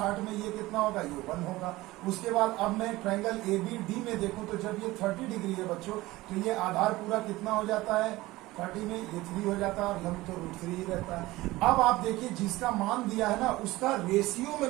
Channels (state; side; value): quieter; left; 18.9 dB